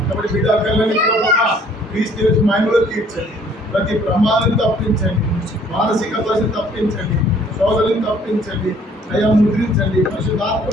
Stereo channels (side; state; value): both; normal; correlation 0.58